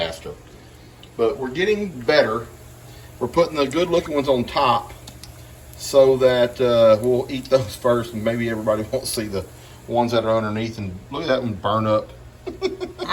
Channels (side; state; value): both; identical; correlation 1.00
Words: But we're getting better. We're putting the good looking ones on top so that we'll eat those first, and maybe everybody won't see the ones that are underneath. And look at that one burn up.